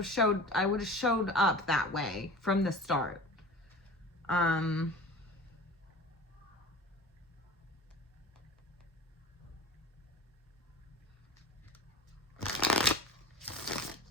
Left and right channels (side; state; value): both; normal; correlation 0.37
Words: showed up that way from the start.